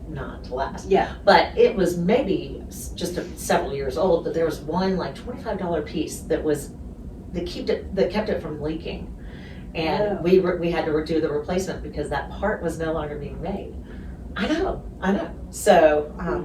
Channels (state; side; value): identical; both; correlation 1.00